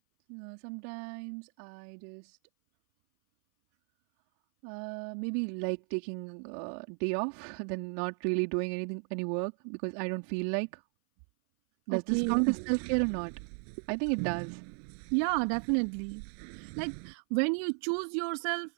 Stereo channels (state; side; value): silent; left; 55 dB below the other